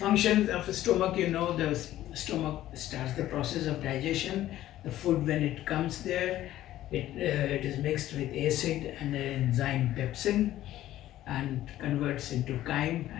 of the stomach, you know, the stomach starts the process of digestion. The food, when it comes there, it is mixed with acid and the enzyme pepsin and converts into chyme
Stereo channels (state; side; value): quieter; right; 13.8 dB